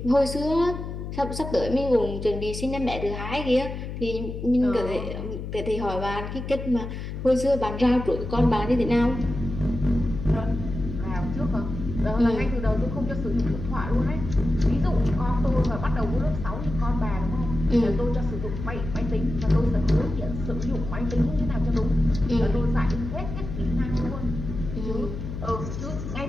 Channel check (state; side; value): noise; left; hum, 7 dB below the sound